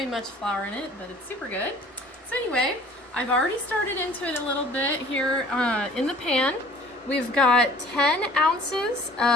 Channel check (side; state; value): both; normal; correlation 0.51